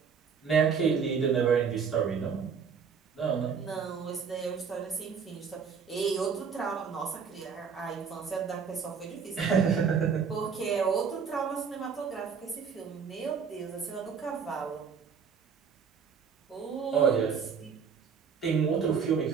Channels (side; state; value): left; quieter; 6.3 dB